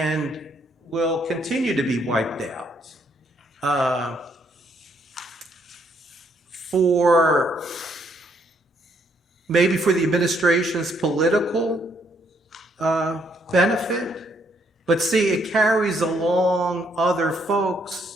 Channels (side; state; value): both; normal; correlation 0.70